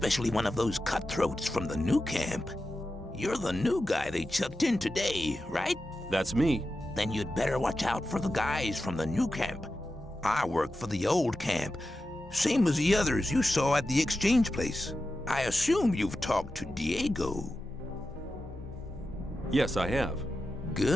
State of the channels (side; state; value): both; normal; correlation 0.91